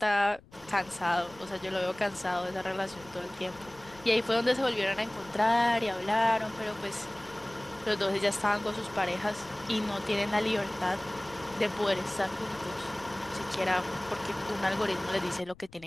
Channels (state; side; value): noise; left; rumble, 24 dB below the sound